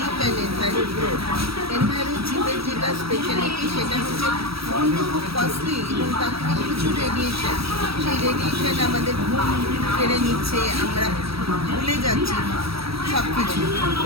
অ্যান্ড এনভায়রো গ্রোথ। এনভায়রো চিপের যেটা স্পেশালিটি সেটা হচ্ছে ফোনটা খুব কস্টলি এবং তার থেকে প্রচুর রেডিয়েশন। সেই রেডিয়েশন আমাদের ঘুম কেড়ে নিচ্ছে, আমরা ভুলে যাচ্ছি সব কিছু।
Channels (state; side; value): late; left; 0.76 ms